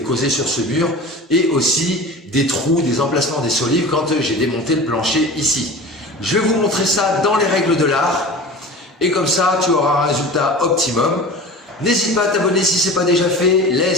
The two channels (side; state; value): both; normal; correlation 0.35